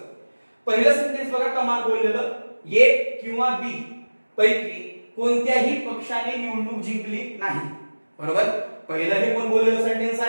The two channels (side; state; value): both; inverted; correlation -1.00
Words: पहिलं सेंटेन्स बघा, कमाल बोललेलं ए किंवा बी पैकी कोणत्याही पक्षाने निवडणूक जिंकली नाही. बरोबर. पहिलं हे कोण बोललेलं सेंटेन्स